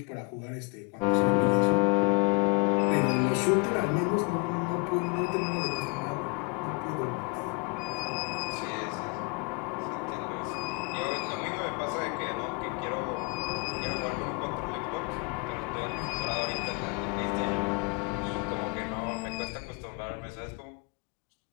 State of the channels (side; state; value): right; quieter; 31.1 dB